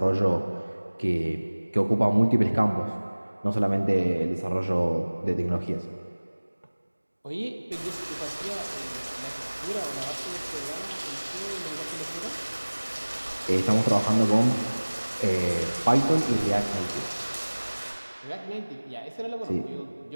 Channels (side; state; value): both; inverted; correlation -1.00